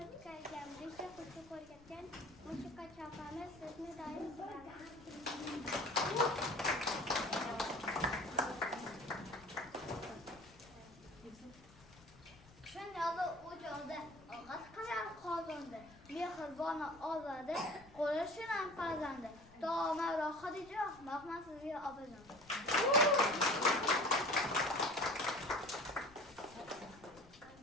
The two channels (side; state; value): left; noise; rumble, 23 dB below the sound